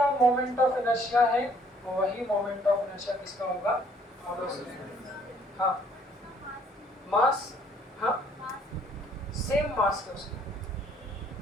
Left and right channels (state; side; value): normal; both; correlation 0.62